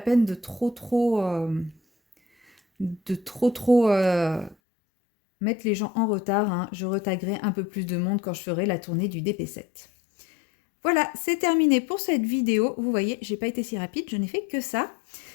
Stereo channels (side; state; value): right; drops out; at 4.5 s